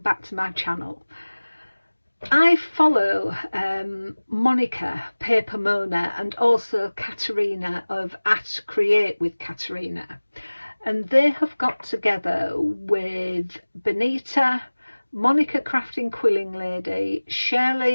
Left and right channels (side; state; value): both; inverted; correlation -1.00